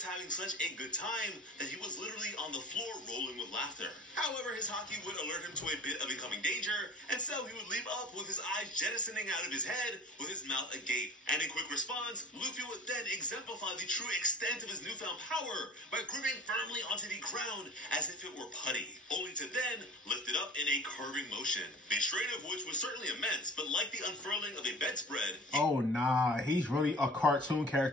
having such a good time that he was literally on the floor rolling with laughter. However, his haki would alert him to a bit of incoming danger, and so he would leap up with his eyes jettisoning out of his head with his mouth agape. And in quick response, Luffy would then exemplify the true extent of his newfound power by gripping firmly onto the ground as if it were putty, only to then lift it up in a curving motion. The strain of which was certainly immense, but like the unfurling of a bedspread... Oh, nah. He's really a cartoon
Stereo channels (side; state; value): both; normal; correlation 0.40